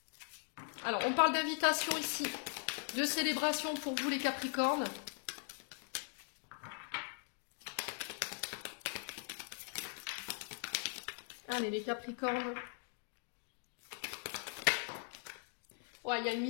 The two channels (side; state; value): right; silent; 51 dB below the other